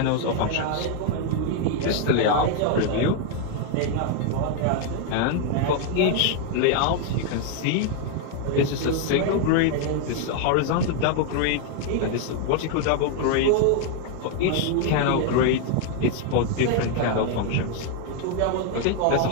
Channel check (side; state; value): both; different; correlation 0.01